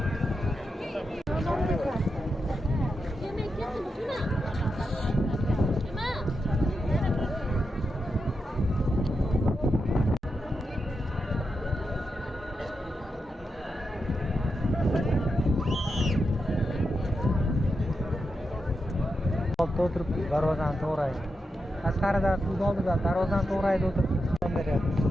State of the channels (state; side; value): normal; both; correlation 0.87